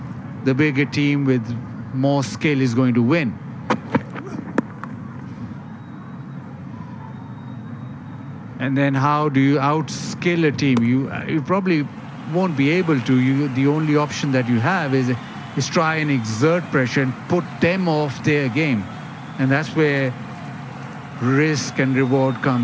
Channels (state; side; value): identical; both; correlation 1.00